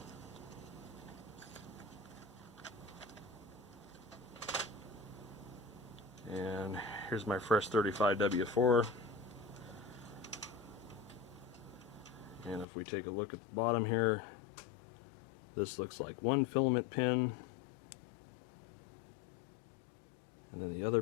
And here's my fresh 35W4. And if we take a look at the bottom here, this looks like one filament pin. And then the other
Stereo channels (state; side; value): drops out; right; at 12.7 s